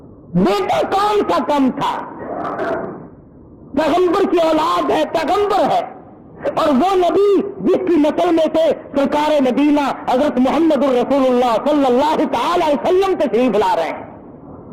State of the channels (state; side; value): identical; both; correlation 1.00